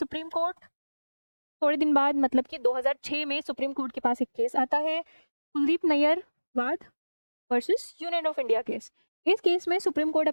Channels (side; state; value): both; inverted; correlation -1.00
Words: कोर्ट, थोड़े दिन बाद मतलब कि 2006 में सुप्रीम कोर्ट के पास एक केस आता है, कुलदीप नैयर वाद versus union of India case. इस केस में सुप्रीम कोर्ट